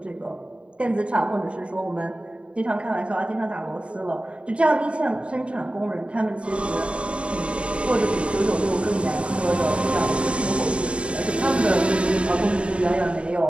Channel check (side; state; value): left; late; 0.059 ms